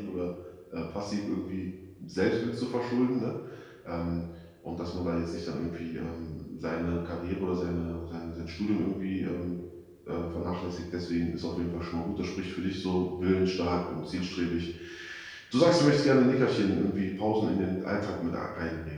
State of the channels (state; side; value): identical; both; correlation 1.00